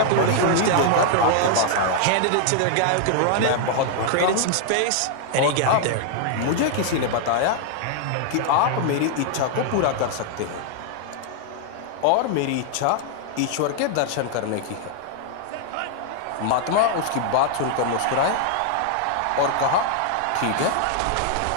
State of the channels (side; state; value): both; different; correlation 0.00